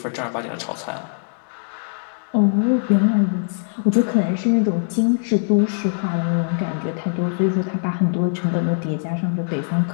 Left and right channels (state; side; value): silent; right; digital silence